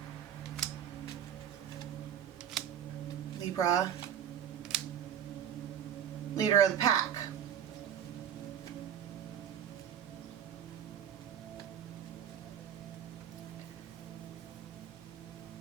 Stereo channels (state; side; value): quieter; left; 9.5 dB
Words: Libra, leader of the pack.